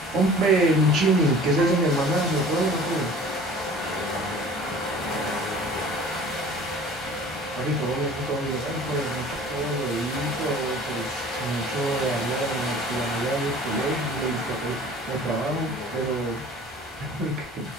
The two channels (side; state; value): both; normal; correlation 0.46